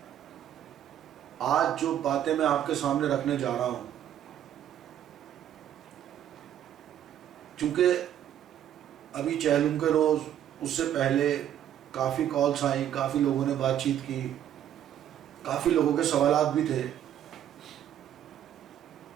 آج جو باتیں میں آپ کے سامنے رکھنے جا رہا ہوں، چونکہ ابھی چہلم کے روز اس سے پہلے کافی کالز آئیں، کافی لوگوں نے بات چیت کی، کافی لوگوں کے سوالات بھی تھے،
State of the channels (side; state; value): left; quieter; 10.7 dB